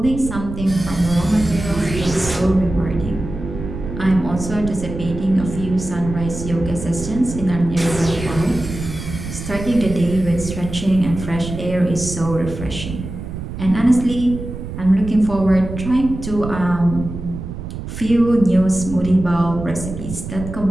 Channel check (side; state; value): right; noise; rumble, 8 dB below the sound